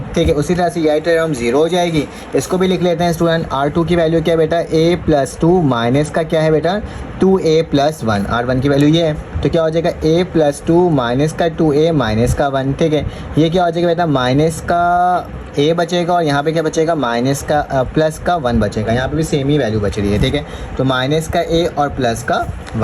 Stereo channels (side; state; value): both; identical; correlation 1.00